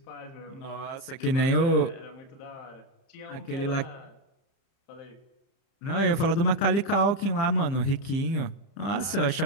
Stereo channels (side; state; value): right; late; 30 ms